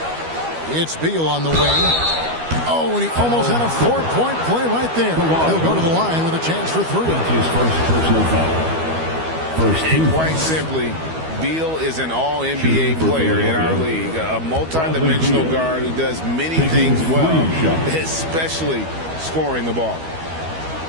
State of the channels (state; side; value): late; left; 12 ms